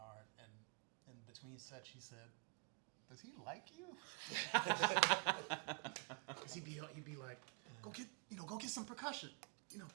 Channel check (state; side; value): quieter; left; 35.3 dB